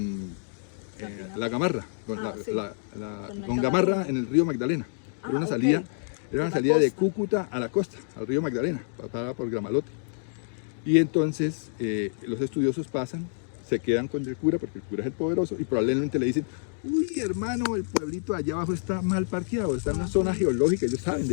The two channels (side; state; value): right; silent; digital silence